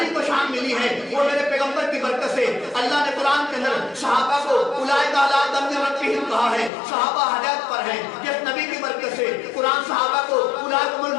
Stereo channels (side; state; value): right; drops out; at 6.7 s